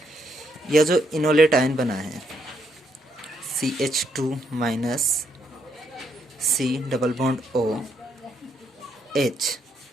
यह जो इनोलेट आयन बना है CH2- C double bond O H,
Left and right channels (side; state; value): both; normal; correlation 0.75